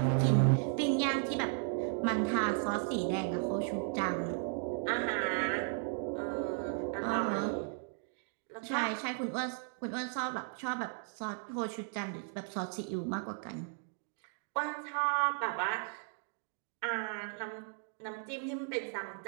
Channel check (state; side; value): silent; left; 54 dB below the other